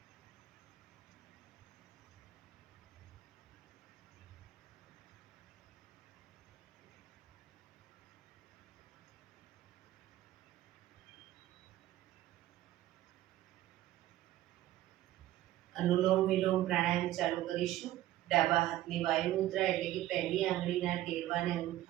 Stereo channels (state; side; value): quieter; left; 14.6 dB